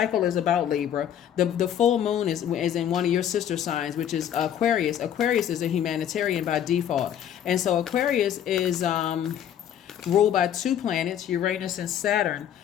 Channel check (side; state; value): right; quieter; 9.9 dB